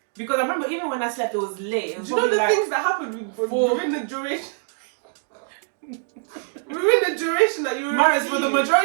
Because I remember even when I slept, it was late. It was Do you know the like things that happened within the duration? Within the duration that you were Marius, for the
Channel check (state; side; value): silent; left; digital silence